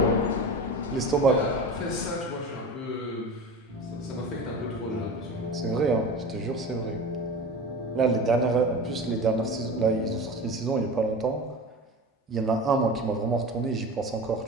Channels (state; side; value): normal; both; correlation 0.31